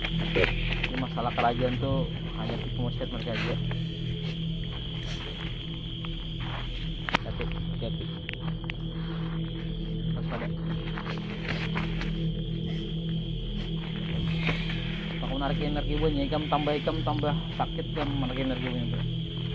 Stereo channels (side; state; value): both; identical; correlation 1.00